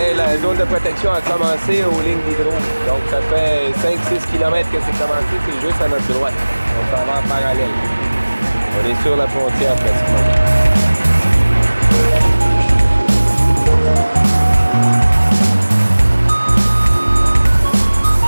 la zone de protection a commencé aux lignes d'hydro. Donc ça fait 5-6 km que c'est commencé, c'est juste à notre droite. On s'en va en parallèle. On est sur la frontière pratiquement.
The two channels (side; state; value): both; inverted; correlation -1.00